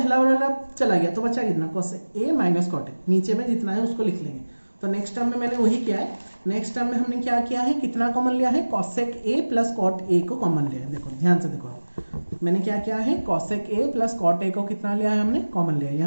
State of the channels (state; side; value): inverted; both; correlation -1.00